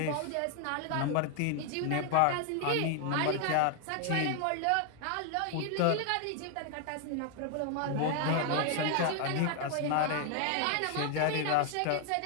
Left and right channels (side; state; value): both; different; correlation 0.00